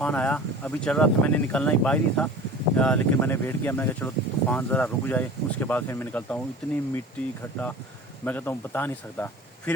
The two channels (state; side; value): normal; both; correlation 0.39